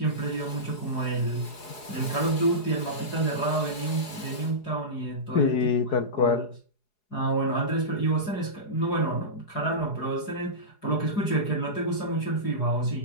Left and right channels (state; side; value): late; right; 4.8 ms